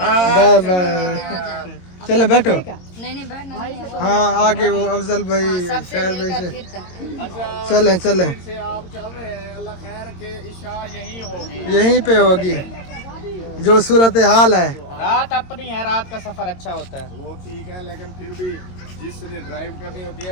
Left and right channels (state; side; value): late; right; 22 ms